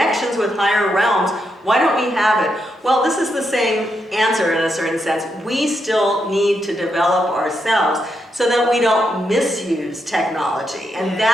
with higher realms, why don't we have it? Well, this is the same answer in a certain sense. We still need to develop ourselves so that we don't misuse technology. And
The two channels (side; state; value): both; normal; correlation 0.82